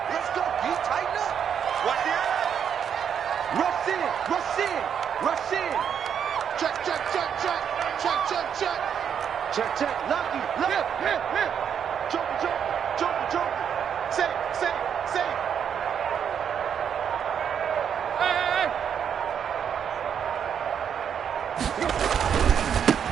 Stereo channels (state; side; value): quieter; left; 8.0 dB